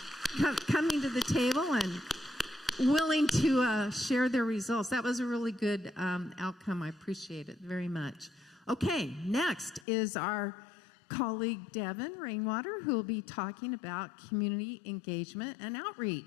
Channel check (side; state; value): right; drops out; at 9.9 s